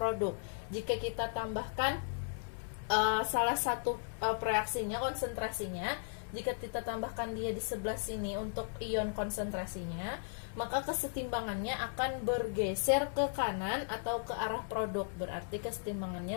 Jika kita tambahkan salah satu pereaksinya, konsentrasinya, jika kita tambahkan dia di sebelah sini untuk ion konsentrasinya, maka kesetimbangannya akan bergeser ke kanan atau ke arah produk. Berarti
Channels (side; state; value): right; silent; digital silence